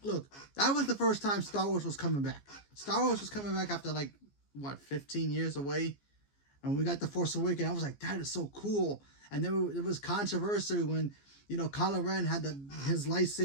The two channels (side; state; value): right; late; 14 ms